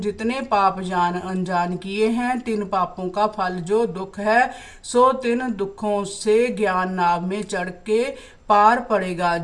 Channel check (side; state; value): both; identical; correlation 1.00